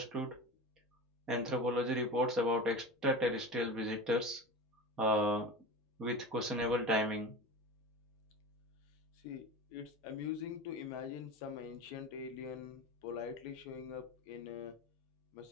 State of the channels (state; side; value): normal; both; correlation 0.30